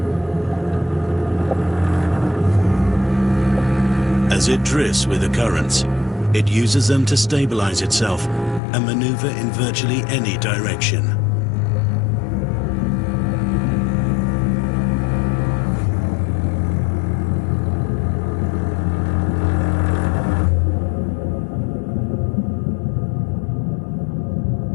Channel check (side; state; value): right; drops out; at 8.6 s